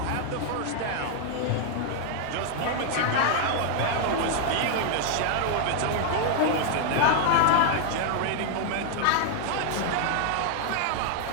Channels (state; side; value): different; both; correlation 0.00